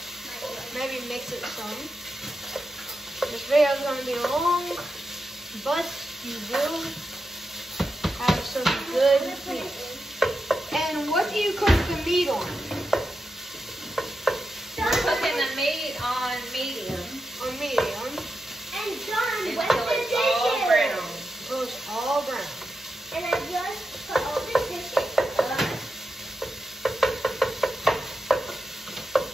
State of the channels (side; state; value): both; normal; correlation 0.88